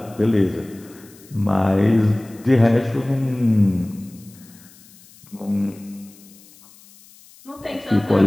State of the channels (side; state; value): left; noise; hiss, 25 dB below the sound